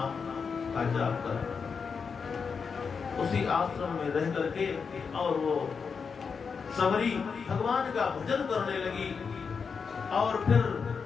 का जाप कर। उसी आश्रम में रह करके और वो सबरी भगवान का भजन करने लगी। और फिर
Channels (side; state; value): right; quieter; 5.7 dB